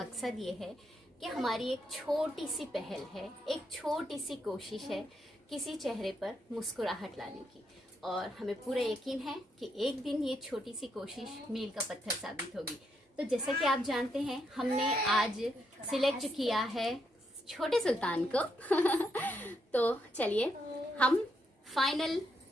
ये है कि हमारी एक छोटी सी पहल है, एक छोटी सी कोशिश है किसी चेहरे पर मुस्कुराहट लाने की, और हमें पूरा यकीन है कि एक दिन ये छोटी सी कोशिश मील का पत्थर साबित होगी। तो जैसा कि आप जानते हैं, हमने आज सिलेक्ट किया है छोटे सुल्तान को तो चलिए हम फाइनल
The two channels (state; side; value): normal; both; correlation 0.79